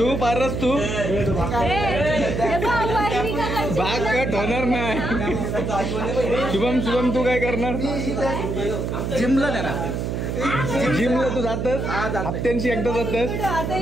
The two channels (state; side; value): noise; right; hum, 2 dB below the sound